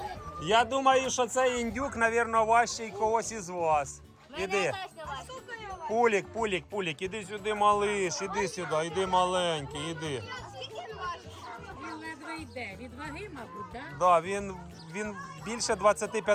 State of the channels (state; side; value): identical; both; correlation 1.00